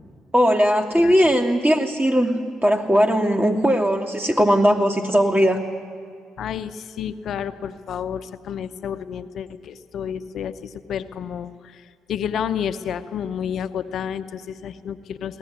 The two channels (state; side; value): normal; both; correlation 0.89